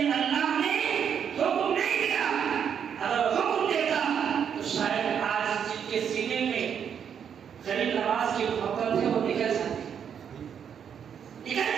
اللہ نے حکم نہیں دیا. اگر حکم دیتا تو شاید آج جن کے سینے میں غریب نواز کی محبت ہے وہ نکل جاتی.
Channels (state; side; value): quieter; left; 7.9 dB